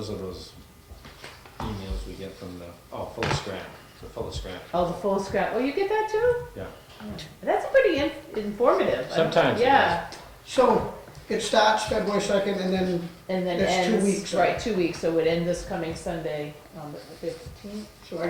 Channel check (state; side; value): identical; both; correlation 1.00